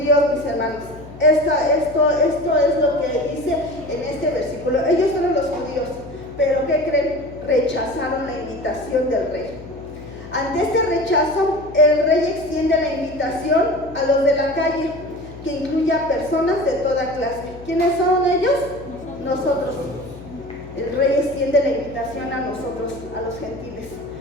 mis hermanos. Esto es lo que dice en este versículo. Ellos fueron los judíos, pero ¿qué creen? Rechazaron la invitación del rey. Ante este rechazo, el rey extiende la invitación a los de la calle, que incluye a personas de toda clase. ¿Quiénes son ellos? Nosotros. El rey extiende la invitación a nosotros, a los gentiles.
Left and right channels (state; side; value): noise; left; hum, 17 dB below the sound